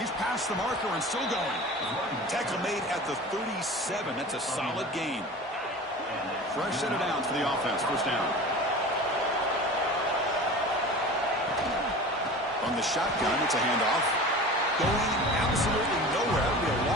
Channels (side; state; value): both; normal; correlation 0.36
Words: past the marker and still going. Tackle made at the 37. That's a solid gain. Fresh set of downs for the offense. First down. On the shotgun, it's a handoff. Going absolutely nowhere. That'll be a